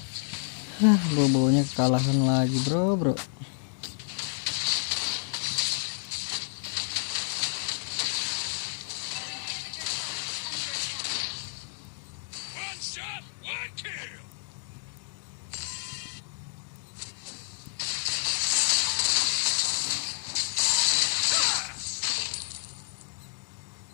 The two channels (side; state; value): right; silent; digital silence